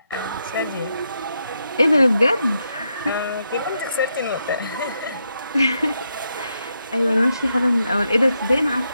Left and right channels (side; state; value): both; inverted; correlation -0.82